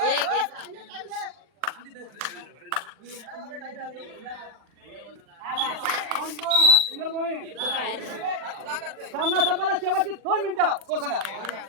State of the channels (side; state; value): left; late; 40 ms